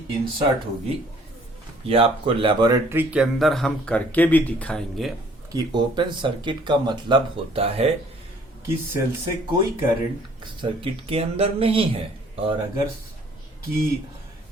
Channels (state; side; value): normal; both; correlation 0.58